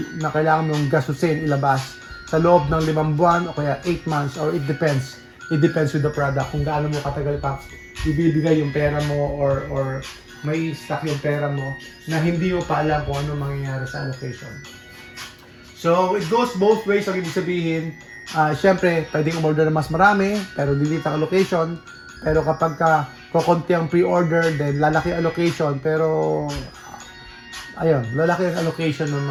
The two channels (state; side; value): identical; both; correlation 1.00